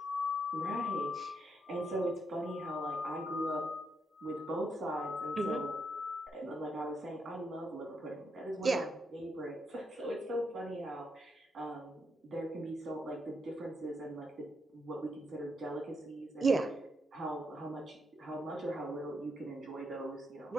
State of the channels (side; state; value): both; normal; correlation 0.79